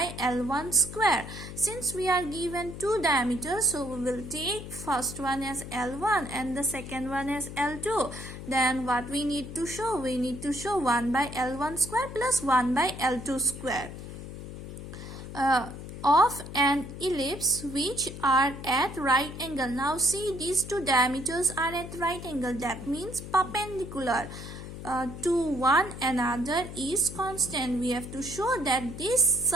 L1 square. Since we are given two diameters, so we will take first one as L1 and the second one as L2. Then what we need to show? We need to show 1 by L1 square plus 1 by L2 square. Of an ellipse which are at right angle. Now see, these two diameters are at right angle. That means perpendicular to one another is constant. We have to show that this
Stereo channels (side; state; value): left; noise; hum, 10 dB below the sound